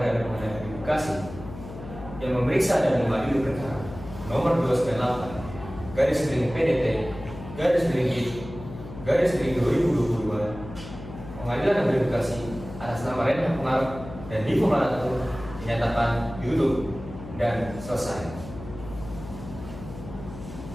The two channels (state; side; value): noise; left; hum, 13 dB below the sound